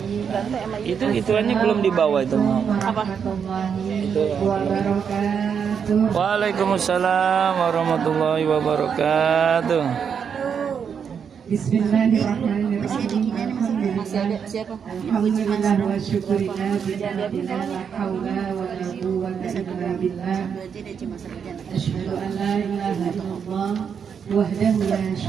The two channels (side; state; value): left; quieter; 7.1 dB